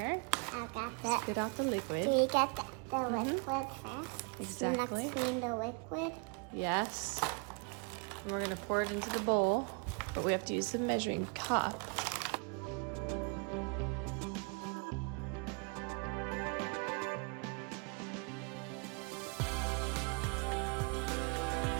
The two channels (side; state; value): left; quieter; 34.7 dB